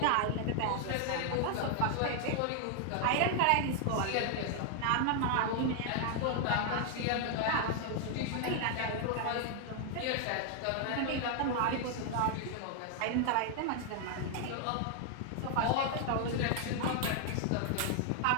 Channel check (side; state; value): both; different; correlation 0.00